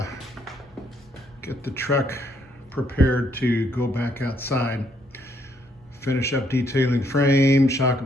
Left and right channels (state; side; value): normal; both; correlation 0.71